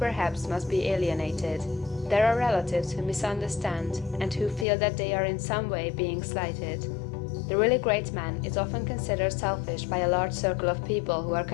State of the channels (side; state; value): right; drops out; at 4.7 s